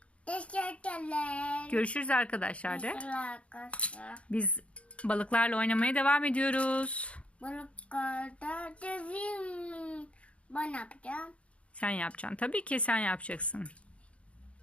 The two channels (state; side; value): late; right; 0.062 ms